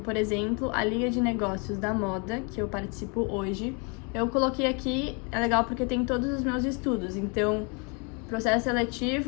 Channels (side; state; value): right; quieter; 33.6 dB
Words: exemplo, a Liga de Negócios da Moda, que eu participo hoje, eu coloquei aqui, é legal porque tem todos os meus estudos. Então, processo